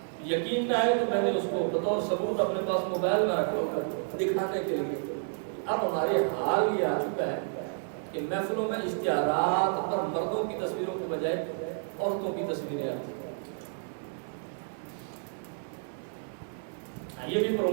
یقین نہ ہے تو میں نے اس کو بطور ثبوت اپنے پاس موبائل میں رکھا کر دکھانے کے لیے۔ اب ہمارے حال یہ آ چکا ہے کہ محفلوں میں اشتہارات پر مردوں کی تصویروں کے بجائے عورتوں کی تصویریں آتی ہیں، یہ بھی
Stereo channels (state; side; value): silent; left; digital silence